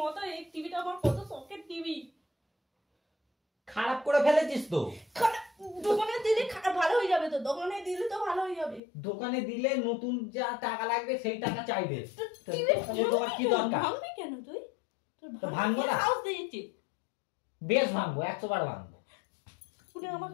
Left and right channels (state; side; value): drops out; right; at 8.8 s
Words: এই টিভিটা আমার কত শখের টিভি। খারাপ করে ফেলেছিস তো। দোকানে দিলে ভালো হয়ে যাবে। তো দোকানে দিলে তো ভালো হয়ে যাবে। দোকানে দিলে নতুন যা টাকা লাগবে সেই টাকা চাইবে। তোমার কি দরকার? ভাঙবি কেন তুই? ভাঙবো না। সাহস দিয়েছি। বেশ ভাঙবো, 100 বার ভাঙবো। তুই